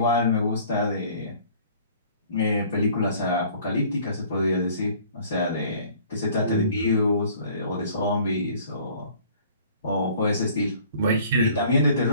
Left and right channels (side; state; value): both; inverted; correlation -0.53